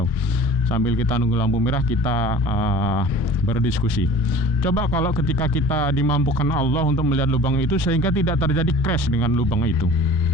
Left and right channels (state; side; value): normal; both; correlation 0.44